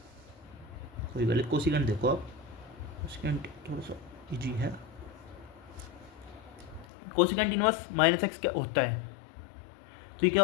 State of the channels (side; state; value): right; drops out; at 6.9 s